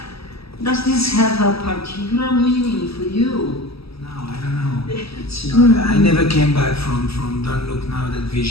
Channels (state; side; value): late; right; 0.77 ms